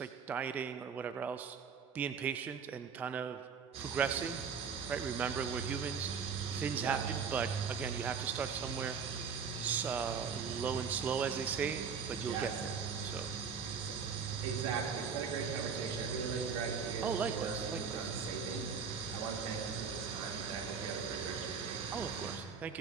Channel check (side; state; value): left; quieter; 6.1 dB